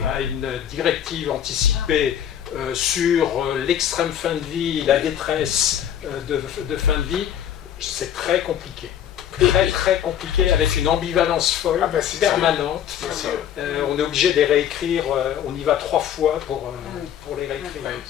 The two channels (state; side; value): quieter; right; 9.7 dB